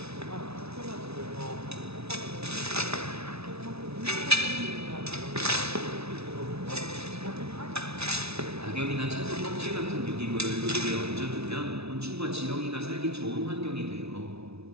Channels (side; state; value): left; late; 0.79 ms